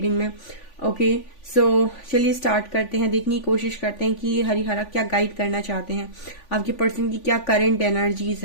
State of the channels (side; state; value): right; late; 3.5 ms